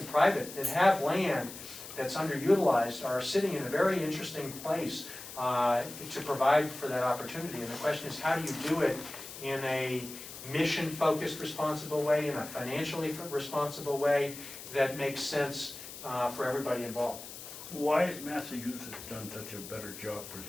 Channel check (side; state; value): left; noise; hiss, 12 dB below the sound